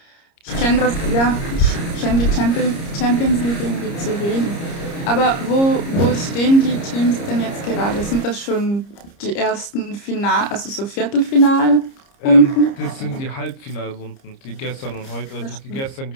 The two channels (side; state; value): right; late; 30 ms